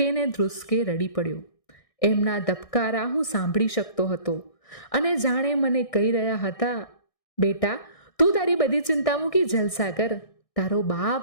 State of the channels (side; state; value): right; late; 1.6 ms